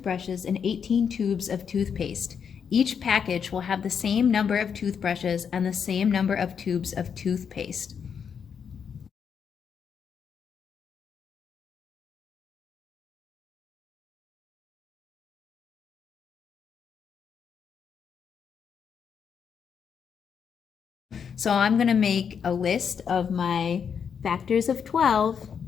and 18 tubes of toothpaste. Each package will have the same number of toothbrushes and the same number of tubes of toothpaste. So I'm going to make a list of my factors of 12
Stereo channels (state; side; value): quieter; right; 7.1 dB